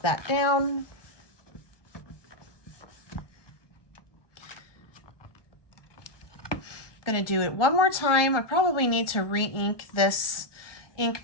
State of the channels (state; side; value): late; right; 1.2 ms